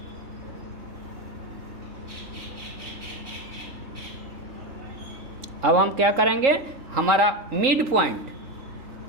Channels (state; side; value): late; left; 3.6 ms